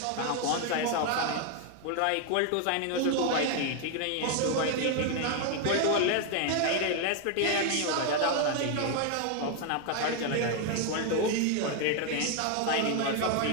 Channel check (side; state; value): both; different; correlation 0.01